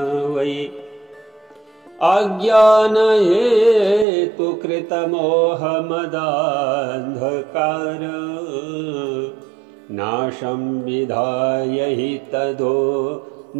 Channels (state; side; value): drops out; left; at 4.0 s